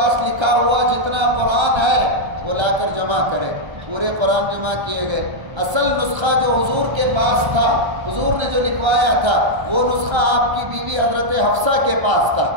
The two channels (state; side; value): late; left; 1.3 ms